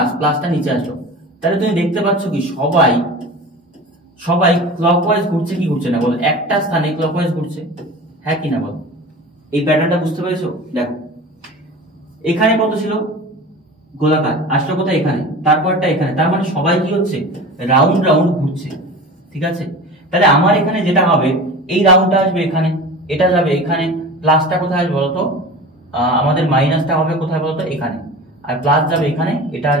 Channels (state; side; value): normal; both; correlation 0.35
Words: প্লাসটা নিচে আসলো, তাহলে তুমি দেখতে পাচ্ছ কি সবাই সবাই ক্লকওয়াইজ ঘুরছে কি ঘুরছে না বলো, একটা স্থানে ক্লকওয়াইজ ঘুরছে, হ্যাঁ কি না বলো। এই প্যাটার্নটা বুঝতে পেরেছো, দেখো এখানে কত ছিল গোলাকার, আসলো কোথায় এখানে, তারপরটা এখানে, তার মানে সবাই কি হচ্ছে রাউন্ড রাউন্ড ঘুরছে, ঠিক আছে। তাহলে আমার এখানে যেটা হবে এই রাউন্ডটা আসবে এখানে, এটা যাবে এখানে, প্লাসটা কোথায় আসবে বলতো আমাদের মাইনাসটা হবে কোথায় বলতো এখানে, আর প্লাস যাবে এখানে, এটা